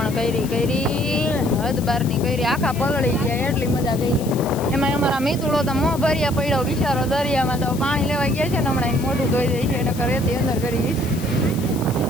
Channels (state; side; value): noise; left; hiss, 15 dB below the sound